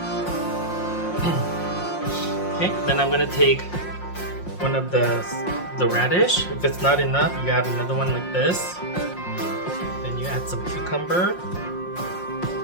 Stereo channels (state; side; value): late; right; 5.6 ms